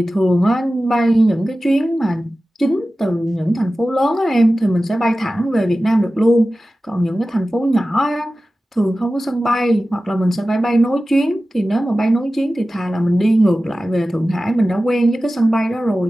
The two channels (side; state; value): both; normal; correlation 0.95